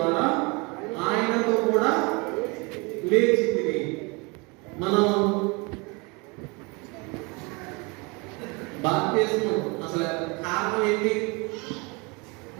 ఆయనతో కూడా లేచింది. మనం బాప్తిస్మం అసలు కారణం ఏంటి?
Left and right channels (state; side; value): quieter; left; 28.5 dB